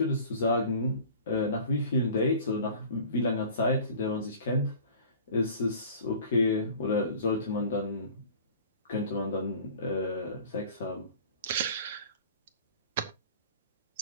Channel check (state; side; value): inverted; both; correlation -0.44